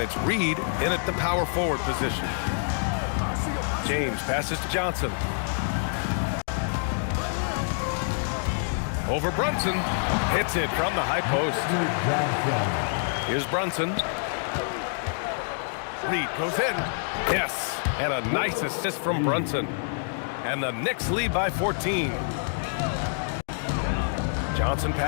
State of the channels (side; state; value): right; silent; digital silence